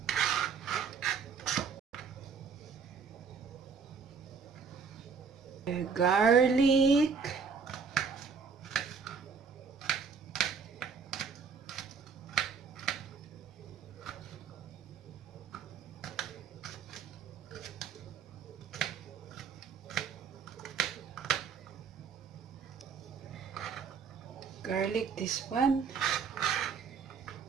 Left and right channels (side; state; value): left; quieter; 5.8 dB